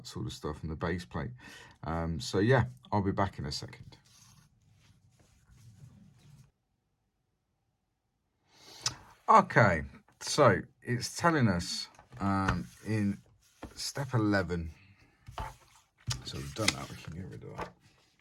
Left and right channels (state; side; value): identical; both; correlation 1.00